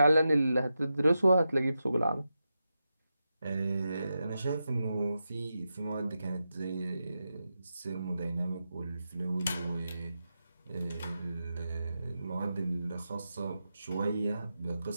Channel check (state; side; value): inverted; both; correlation -0.89